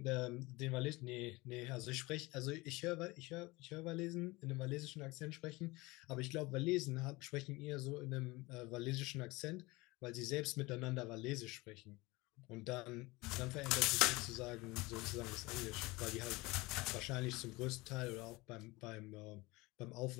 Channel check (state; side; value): quieter; right; 22.6 dB